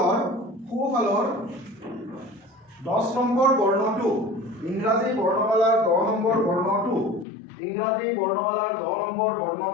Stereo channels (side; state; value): right; drops out; at 7.2 s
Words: 10 নম্বৰ বৰ্ণটো ইংৰাজী বৰ্ণমালাৰ 10 নম্বৰ বৰ্ণটো ইংৰাজী বৰ্ণমালাৰ 10 নম্বৰ